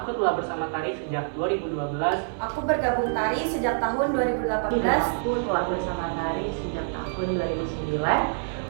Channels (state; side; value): silent; left; 56 dB below the other